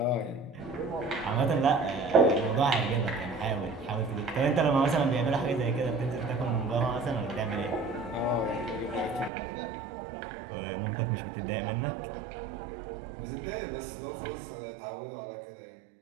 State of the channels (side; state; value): left; drops out; at 9.3 s